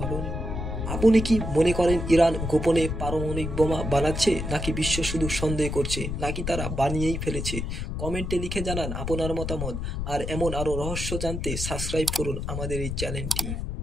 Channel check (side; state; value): left; noise; rumble, 4 dB below the sound